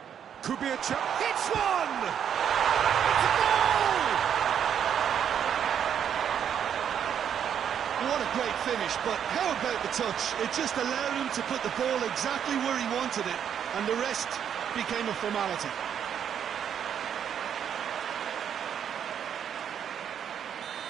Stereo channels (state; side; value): quieter; left; 8.7 dB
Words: Could be a chance. Hits one! It's a goal! What a great finish, but how about the touch? It just allowed him to put the ball exactly where he wanted it, and the rest became a formality.